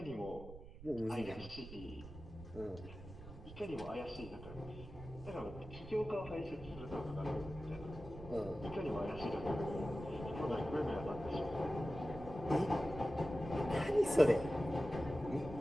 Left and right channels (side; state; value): right; noise; rumble, 14 dB below the sound